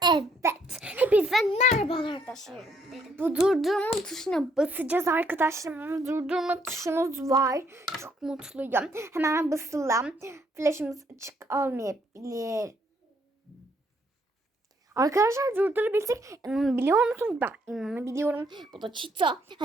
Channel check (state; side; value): normal; both; correlation 0.70